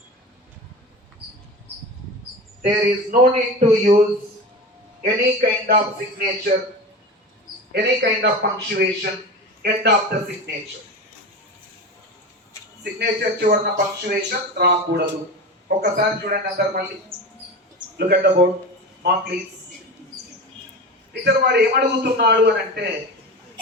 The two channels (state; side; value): normal; both; correlation 0.28